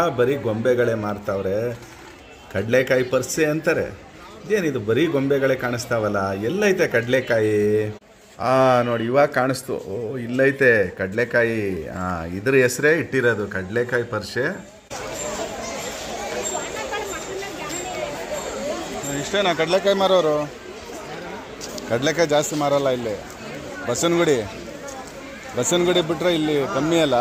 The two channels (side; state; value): both; identical; correlation 1.00